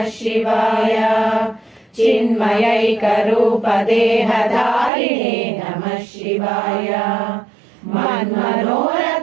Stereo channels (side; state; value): left; drops out; at 4.9 s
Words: शिवाय चिन्मयैक रूप देहधारिणे नमः शिवाय